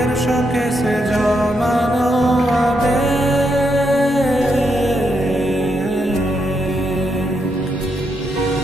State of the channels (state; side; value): normal; both; correlation 0.80